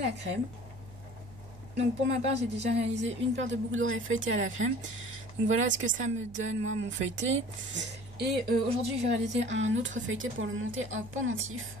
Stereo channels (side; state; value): right; noise; hum, 18 dB below the sound